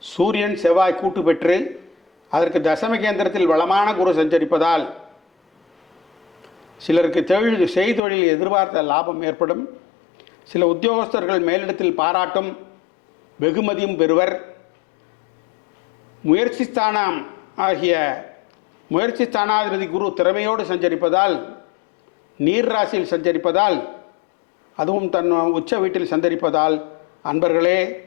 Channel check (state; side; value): drops out; right; at 8.0 s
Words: சூரியன், செவ்வாய் கூட்டு பெற்று அதற்கு தசம கேந்திரத்தில் வளமான குரு சஞ்சரிப்பதால் சிலருக்கு செய்தொழில் எதிர்பார்த்த லாபம் ஏற்படும். சில உத்தியோகஸ்தர்கள் மேலிடத்தில் பாராட்டும் வெகுமதியும் பெறுவர். முயற்சி ஸ்தானாதிபதி குரு திறமையோடு சஞ்சரிப்பதால், நீர் ராசியில் சஞ்சரிப்பதால், அதுவும் தன் உச்ச வீட்டில் சஞ்சரிப்பதால் அன்பர்களே,